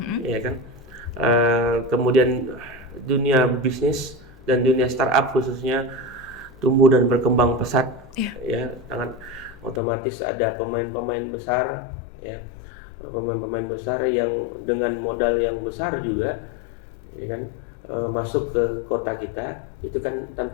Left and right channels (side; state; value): right; drops out; at 9.8 s